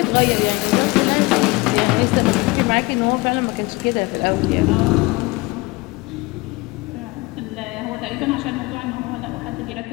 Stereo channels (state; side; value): quieter; right; 23.7 dB